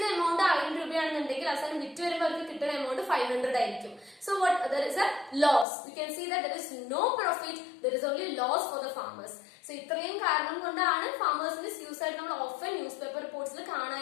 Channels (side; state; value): right; drops out; at 5.7 s